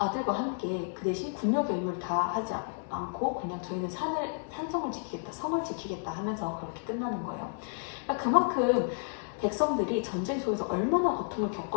함께 그 대신 군역의 의무를 다 하지 않고 그냥 저희는 산성을 지키겠다, 성을 지키겠다 하면서 그렇게 끝나는 거예요. 그러니까 그만큼 백성들이 전쟁 속에서 얼마나 고통을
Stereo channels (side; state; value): right; silent; digital silence